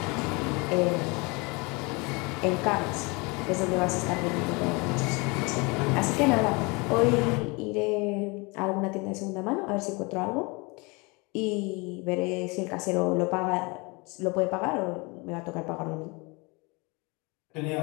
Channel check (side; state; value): right; quieter; 27.9 dB